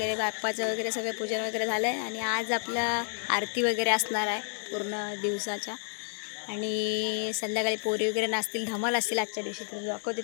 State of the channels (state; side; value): silent; right; 58 dB below the other